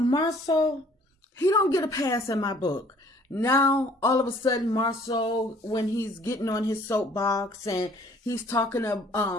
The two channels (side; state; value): both; normal; correlation 0.57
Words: he don't get a pass in my book. Now, all of a sudden, Marsau, when he's getting on his soapbox and he's talking